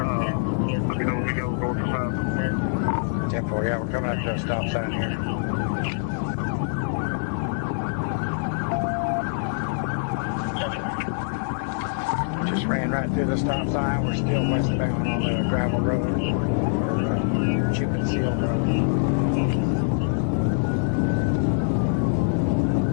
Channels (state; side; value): silent; right; digital silence